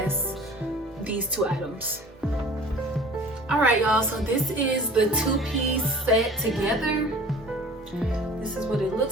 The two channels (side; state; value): both; normal; correlation 0.45